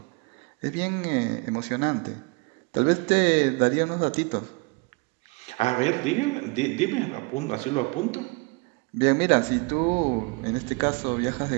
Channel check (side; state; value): left; quieter; 28.4 dB